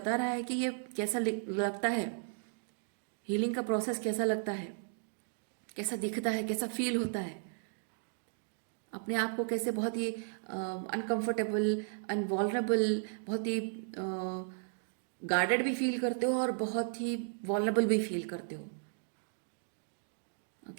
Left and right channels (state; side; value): silent; left; digital silence